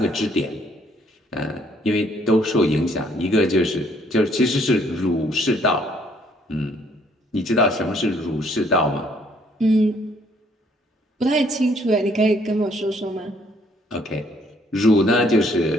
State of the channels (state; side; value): normal; both; correlation 0.65